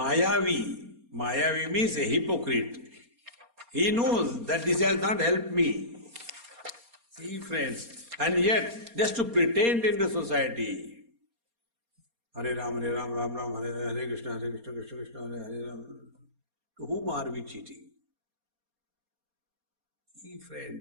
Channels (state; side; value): late; left; 4.3 ms